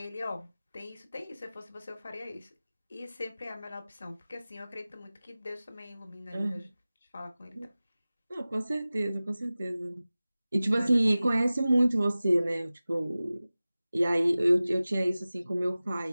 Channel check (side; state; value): both; inverted; correlation -0.97